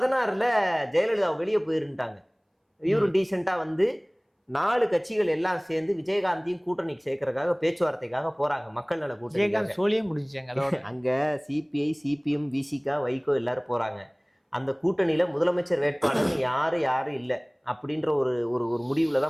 ஜெயலலிதா வெளியே போயிருந்துட்டாங்க. இவரும் டீசெண்டா வந்து 4 கட்சிகள் எல்லாம் சேர்ந்து விஜயகாந்தையும் கூட்டணிக்கு சேர்க்கறதுக்காக பேச்சுவார்த்தைக்காக போறாங்க. மக்கள் நல கூட்டணி சோழியே முடிஞ்சாங்க. அங்க சிபிஐ, சிபிஎம், விசிகா, வைகோ எல்லாரும் போறாங்க. அந்த கூட்டணியில முதலமைச்சர் வேட்பாளர்னு யாரும் இல்லை அப்படின்ற ஒரு முடிவுல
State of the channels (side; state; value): both; identical; correlation 1.00